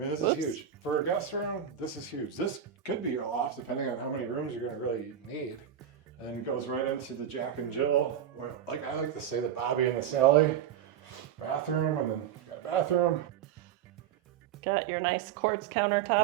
this is huge. For a guest room, this is huge. This could be your loft, depending on how many rooms you're gonna really need. And then it goes right into the Jack and Jill, or like I like to say, the Bobby and the Sally bathroom, and then you got a bathroom. Got your nice quartz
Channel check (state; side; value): quieter; left; 9.2 dB